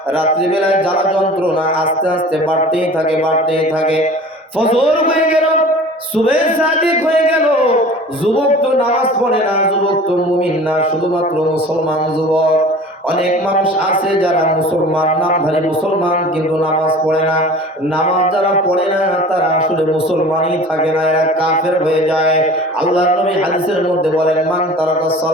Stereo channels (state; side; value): normal; both; correlation 0.42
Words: রাত্রিবেলায় জ্বালা যন্ত্রণা আস্তে আস্তে বাড়তেই থাকে, বাড়তেই থাকে। ফজর হয়ে গেল, সুবহে সাদিক হয়ে গেল। যুবক তো নামাজ পড়ে না, যুবক তো মুমিন না, শুধুমাত্র মুসলমান যুবক। অনেক মানুষ আছে যারা মুসলমান, নামধারী মুসলমান, কিন্তু নামাজ পড়ে না। নামাজ যারা পড়ে না তারা আসলে মুসলমানই থাকে না, এরা কাফের হয়ে যায়। আল্লাহর নবী হাদিসের মধ্যে বলেন, মান তারাকাস